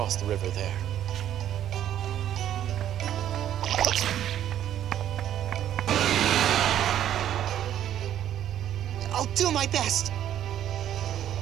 the river there. do my best.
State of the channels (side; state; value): left; quieter; 11.0 dB